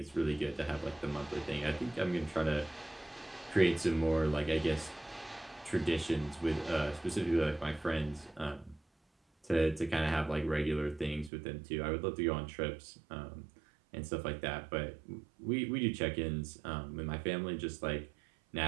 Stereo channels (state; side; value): drops out; left; at 11.3 s